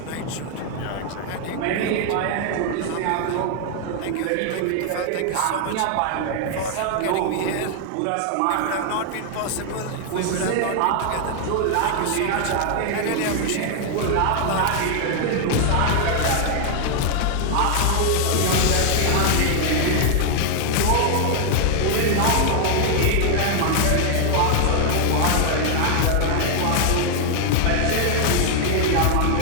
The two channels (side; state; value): both; different; correlation 0.00